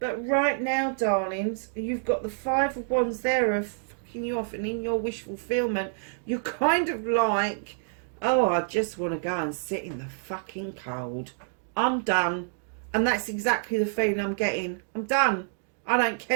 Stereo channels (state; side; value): silent; left; digital silence